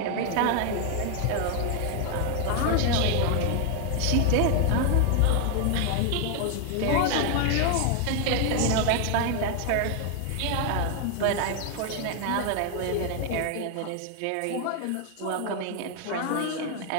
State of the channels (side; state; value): both; different; correlation 0.00